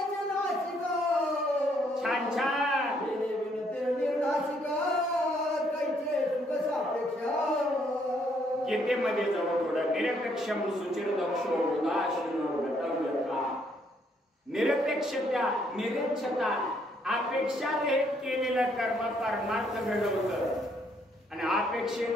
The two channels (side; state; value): both; normal; correlation 0.70